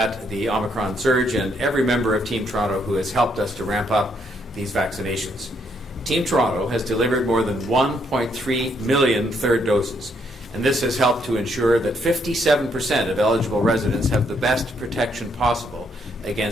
the Omicron surge and every member of Team Toronto who has helped us to ramp up these vaccinations. Team Toronto has delivered more than 1.3 million third doses, and this has helped to ensure that 57% of eligible residents have the best protection possible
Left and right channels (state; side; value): normal; both; correlation 0.73